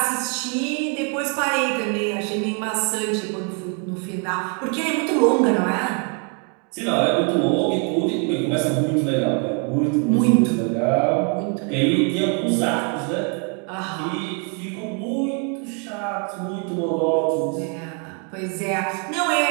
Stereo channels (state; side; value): quieter; left; 38.8 dB